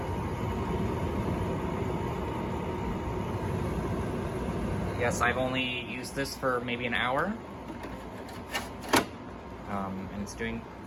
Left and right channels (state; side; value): identical; both; correlation 1.00